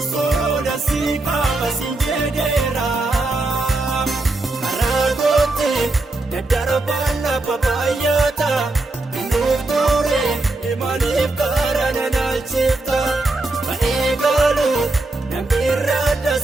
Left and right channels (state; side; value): quieter; left; 3.0 dB